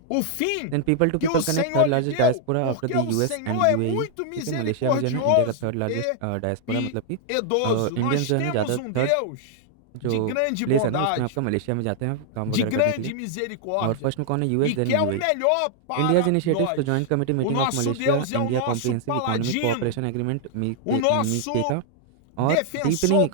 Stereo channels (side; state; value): both; different; correlation -0.01